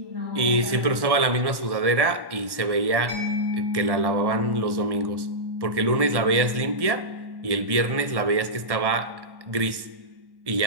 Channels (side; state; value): left; late; 1.1 ms